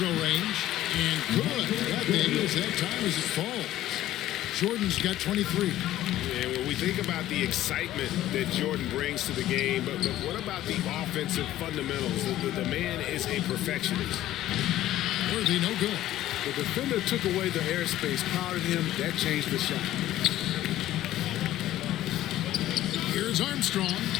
range. And good. That thing is that time as it falls. Jordan's got 23. And when we think about the excitement that Jordan brings to the game, but what about the offensive fundamentals? The man is a perfectionist. Worthy, no good. The defender took away the airspace, crowded him. That changed the shot. Here's Armstrong.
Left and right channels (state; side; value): quieter; right; 14.0 dB